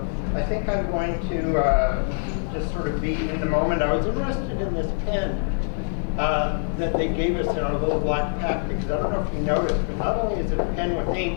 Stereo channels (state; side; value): silent; right; digital silence